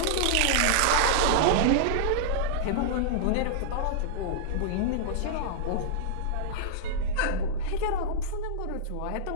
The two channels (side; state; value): both; different; correlation -0.02